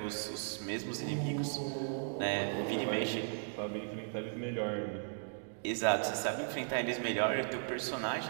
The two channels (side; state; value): left; silent; digital silence